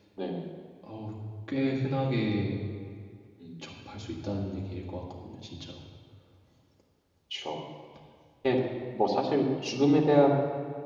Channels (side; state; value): both; identical; correlation 1.00